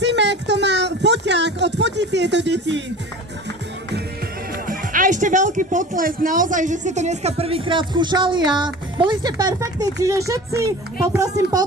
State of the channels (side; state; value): both; normal; correlation 0.38